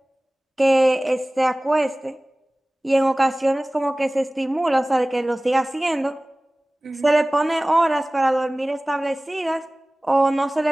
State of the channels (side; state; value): both; normal; correlation 0.98